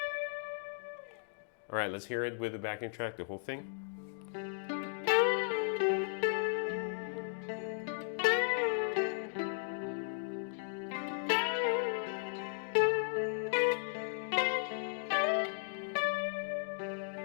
All right, let's hear it with the backing track, the whole thing.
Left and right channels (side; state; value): right; silent; digital silence